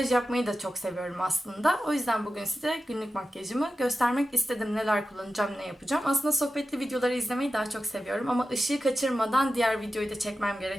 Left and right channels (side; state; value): both; normal; correlation 0.92